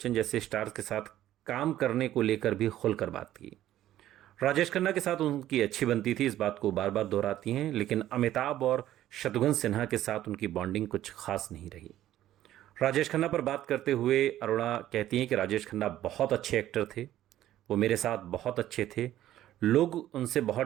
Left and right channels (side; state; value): left; quieter; 13.1 dB